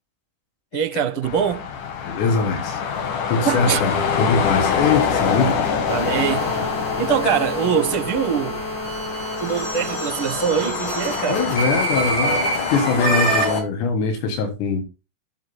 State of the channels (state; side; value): late; right; 10 ms